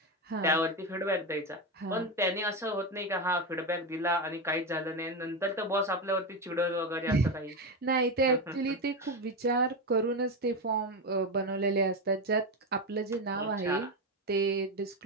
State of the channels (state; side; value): normal; both; correlation 0.13